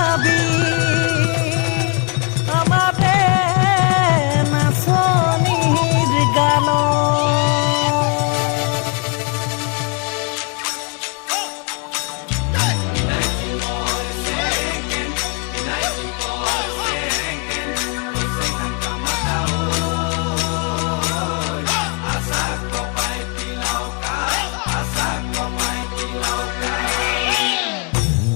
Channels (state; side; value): quieter; right; 34.2 dB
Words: আমাতে নাচনিৰ গান